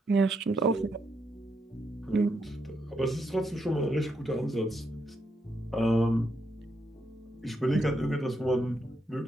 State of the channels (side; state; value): both; normal; correlation 0.79